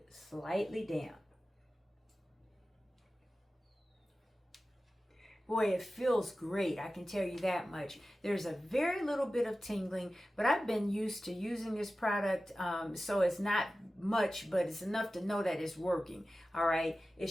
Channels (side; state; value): both; normal; correlation 0.95